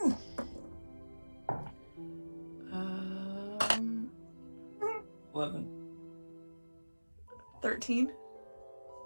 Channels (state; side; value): inverted; both; correlation -1.00